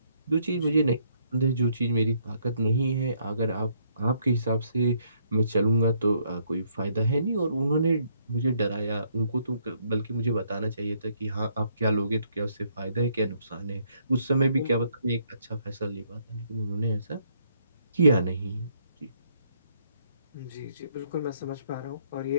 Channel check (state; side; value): inverted; both; correlation -0.70